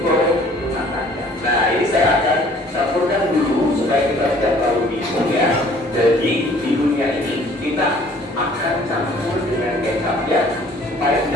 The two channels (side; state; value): both; normal; correlation 0.55